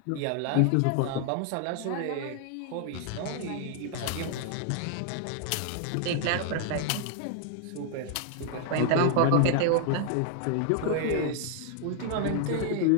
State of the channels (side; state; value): both; different; correlation 0.00